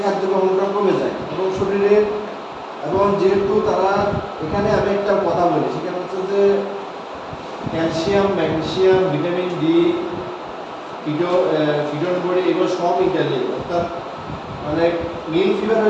খাদ্য গ্রহণটাও কমে যায় এবং শরীরের এবং যেহেতু তারা এখানে আমি একটা কথা বলি সেখানে হচ্ছে যে calcium, magnesium, vitamin D, ketone body এগুলো সব ইত্যাদি। অর্থাৎ মানে মিল ফিভার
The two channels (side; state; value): both; identical; correlation 1.00